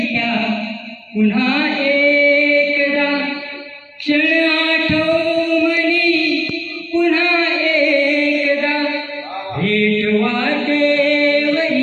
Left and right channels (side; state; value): both; identical; correlation 1.00